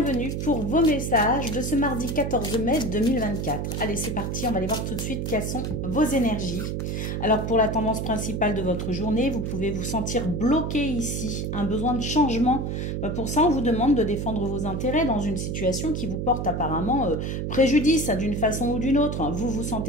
pour vos messages de ce mardi 14 mai 2024. Allez, c'est parti, on va aller voir tout de suite quelles sont vos énergies. Alors, pour la tendance principale de votre journée, vous pouvez vous sentir bloqué ici, un besoin de changement. Pour ça, on vous demande de défendre vos intérêts dans une situation qui vous porte apparemment préjudice d'une façon ou d'une autre. Vous vous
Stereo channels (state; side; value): noise; right; hum, 2 dB below the sound